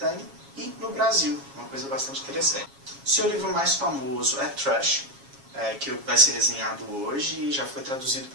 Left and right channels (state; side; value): late; left; 7.3 ms